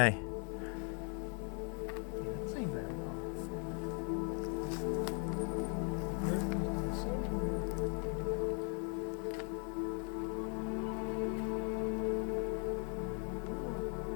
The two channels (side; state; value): right; quieter; 39.9 dB